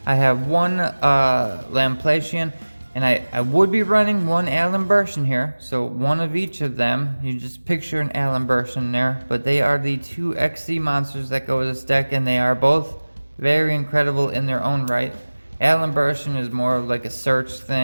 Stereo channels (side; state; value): both; inverted; correlation -1.00